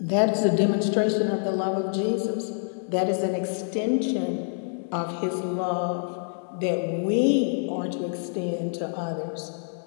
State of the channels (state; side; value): silent; right; 61 dB below the other